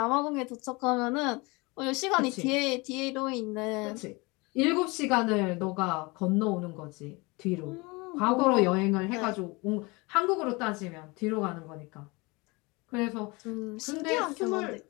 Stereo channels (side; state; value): right; quieter; 25.7 dB